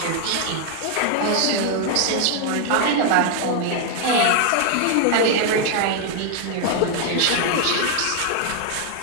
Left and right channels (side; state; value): both; different; correlation 0.00